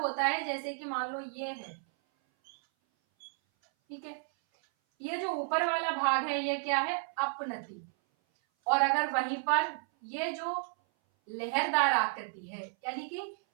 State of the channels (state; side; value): silent; left; 56 dB below the other